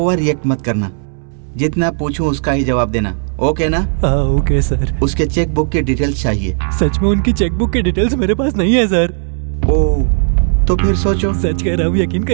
रिएक्ट मत करना, जितना पूछूं उसका ही जवाब देना, ओके ना? हाँ ओके सर। उसके चेक बुक की डिटेल्स चाहिए। सच में उनकी चेक बुक की डिटेल्स मेरे पास नहीं है सर। ओह, तो फिर सोचो। सच कह रहा हूँ, यकीन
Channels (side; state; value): left; silent; 69 dB below the other